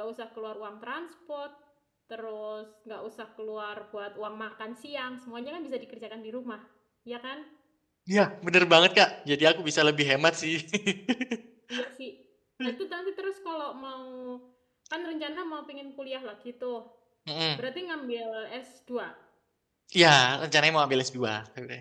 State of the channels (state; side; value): identical; both; correlation 1.00